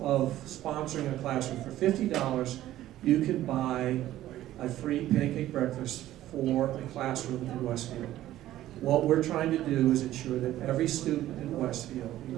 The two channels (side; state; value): left; quieter; 13.9 dB